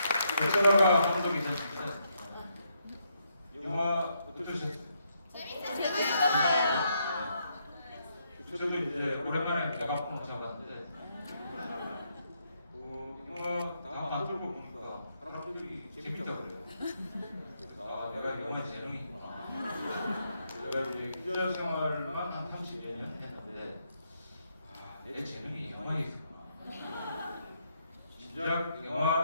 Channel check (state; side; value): inverted; both; correlation -0.77